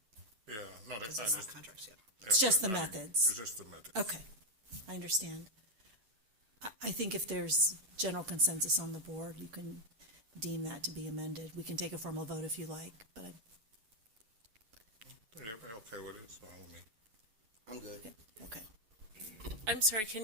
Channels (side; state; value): left; late; 9.3 ms